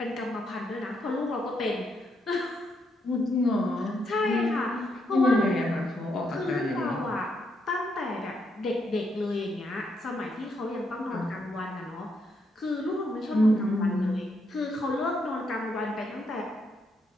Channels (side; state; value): both; normal; correlation 0.77